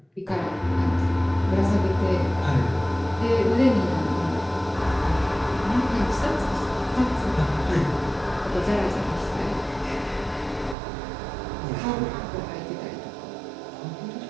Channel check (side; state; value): left; drops out; at 10.8 s